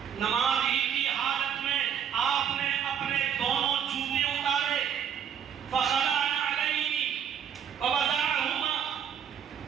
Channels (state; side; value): quieter; left; 8.5 dB